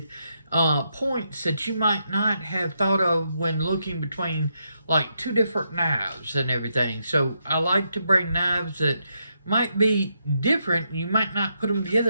points that you might not have thought of when looking between like two different knives and everything. So I like to bring knives that might be different. You might not put them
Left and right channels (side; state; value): both; inverted; correlation -0.80